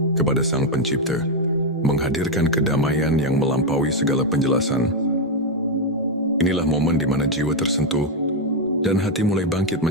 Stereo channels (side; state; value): both; normal; correlation 0.03